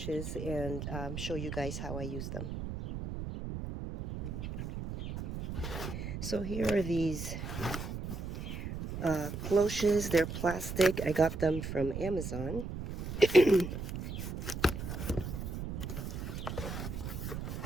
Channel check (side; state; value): right; noise; rumble, 6 dB below the sound